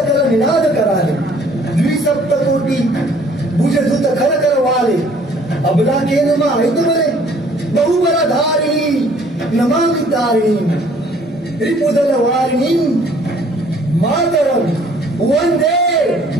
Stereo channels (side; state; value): both; normal; correlation 0.58